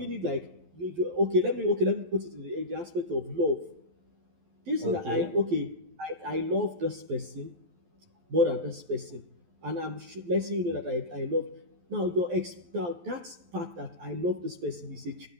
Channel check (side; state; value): left; late; 12 ms